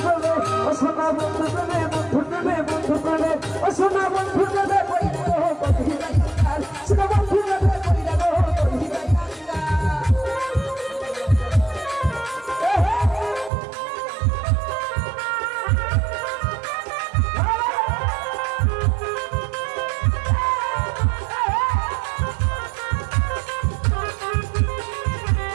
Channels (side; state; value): left; drops out; at 13.5 s